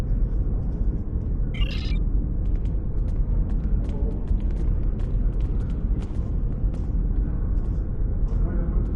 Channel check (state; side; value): identical; both; correlation 1.00